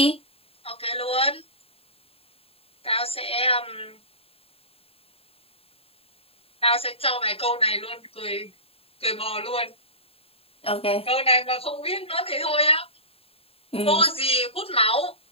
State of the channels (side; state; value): right; late; 0.28 ms